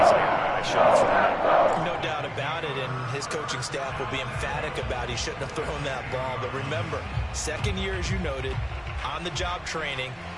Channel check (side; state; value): both; identical; correlation 1.00